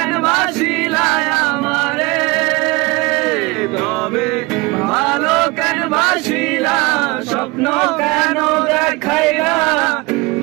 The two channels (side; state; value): left; quieter; 24.9 dB